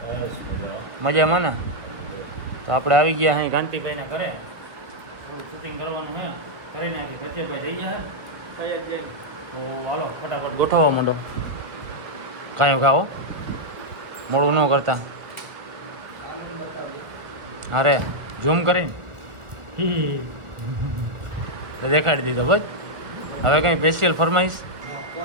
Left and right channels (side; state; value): left; late; 1.4 ms